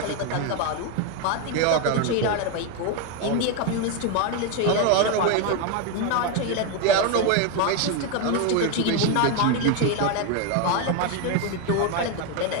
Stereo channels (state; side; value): different; both; correlation 0.02